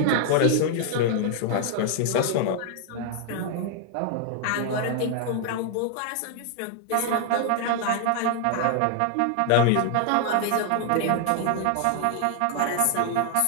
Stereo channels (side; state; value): both; different; correlation 0.00